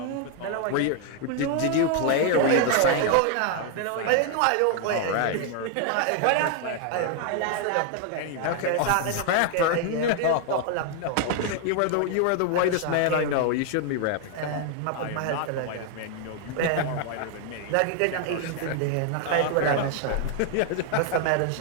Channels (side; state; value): both; different; correlation 0.00